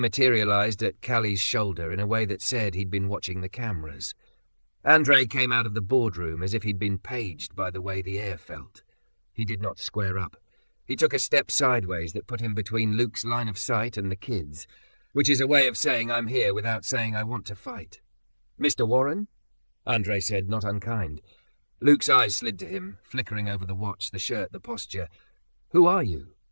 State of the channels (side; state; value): both; inverted; correlation -1.00